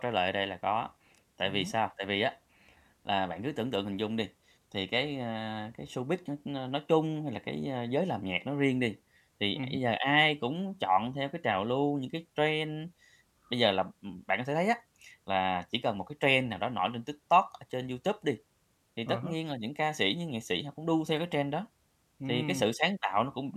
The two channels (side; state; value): both; identical; correlation 1.00